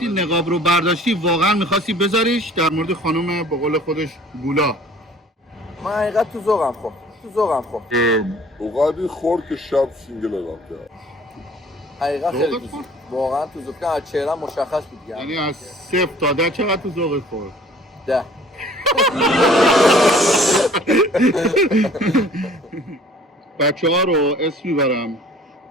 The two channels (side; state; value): both; normal; correlation 0.52